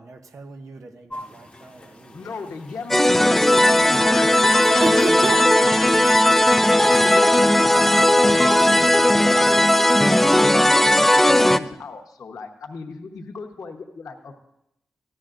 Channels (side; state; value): both; normal; correlation 0.97